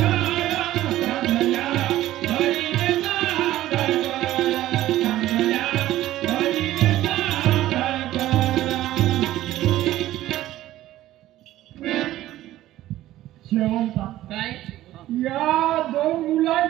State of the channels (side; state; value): left; quieter; 14.6 dB